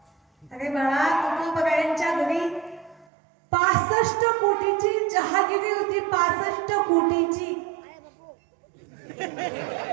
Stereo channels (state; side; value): drops out; left; at 3.1 s